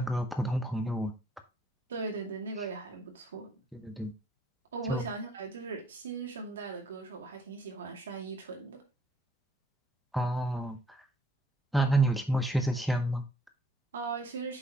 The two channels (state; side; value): normal; both; correlation 0.64